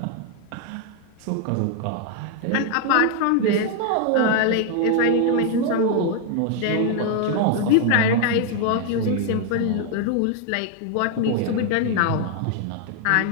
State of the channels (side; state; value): both; different; correlation 0.00